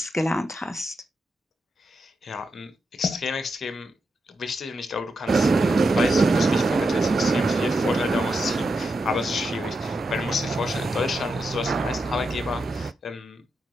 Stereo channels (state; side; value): normal; both; correlation 0.85